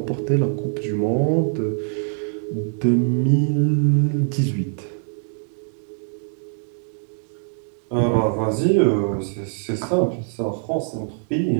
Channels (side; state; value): left; silent; 61 dB below the other